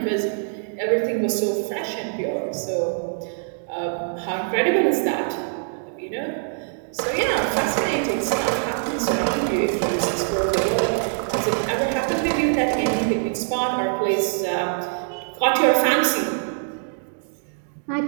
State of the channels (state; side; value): silent; left; digital silence